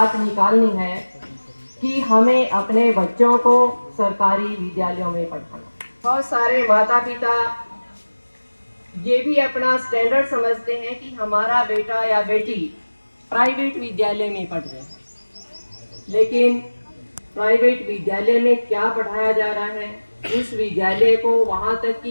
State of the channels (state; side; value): inverted; both; correlation -1.00